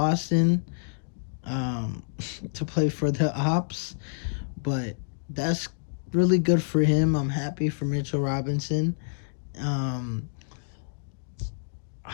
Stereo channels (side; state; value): right; silent; digital silence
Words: um, to play for the Ops. But that's really good for him. I'm happy for Mitchell Robinson. Um,